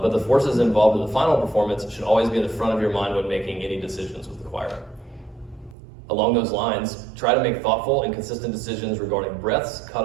the forces involved in the final performance should always be in the front of your mind when making any decisions with the choir. Along those lines, try to make thoughtful and consistent decisions regarding breaths,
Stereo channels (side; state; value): left; drops out; at 5.8 s